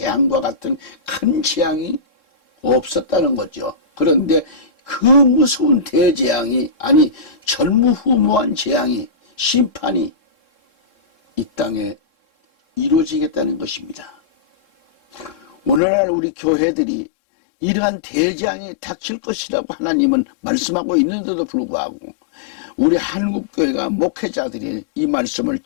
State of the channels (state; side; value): drops out; right; at 15.8 s